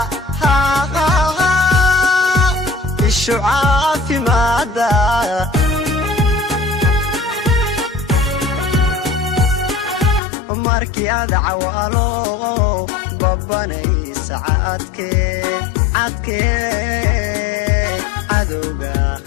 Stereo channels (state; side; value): drops out; right; at 10.2 s